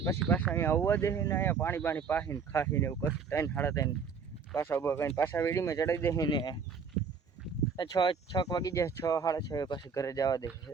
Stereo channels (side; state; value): left; quieter; 5.8 dB